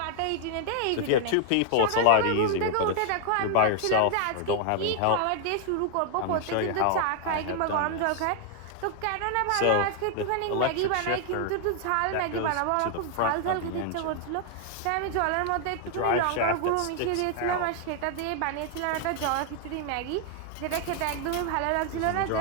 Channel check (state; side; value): different; both; correlation 0.00